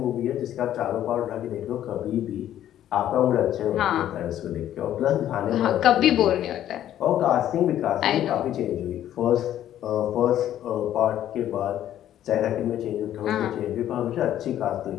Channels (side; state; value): right; quieter; 11.7 dB